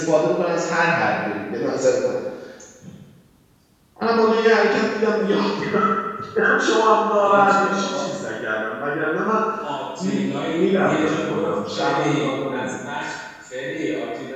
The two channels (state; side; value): identical; both; correlation 1.00